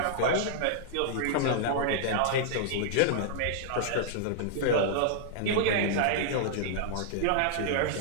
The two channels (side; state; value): both; different; correlation -0.01